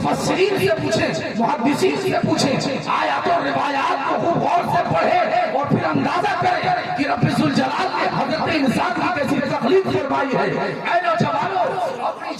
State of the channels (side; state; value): both; identical; correlation 1.00